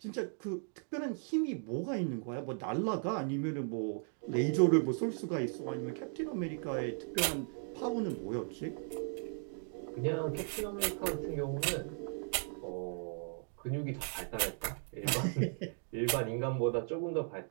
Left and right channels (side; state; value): left; silent; 53 dB below the other